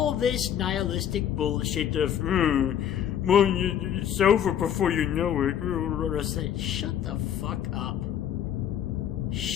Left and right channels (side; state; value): right; quieter; 9.7 dB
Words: this nihilistic bullshit of, well, it's over before you know it. Shut the fuck up.